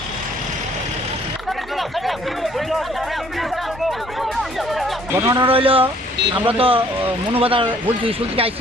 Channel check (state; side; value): normal; both; correlation 0.60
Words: ঘটনাটা রইল, আমরা তো মনোবাদার বলছি স্কুল থেকে